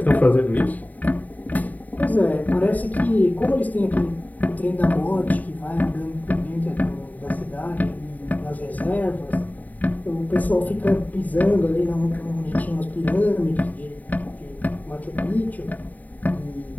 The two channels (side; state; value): right; late; 0.077 ms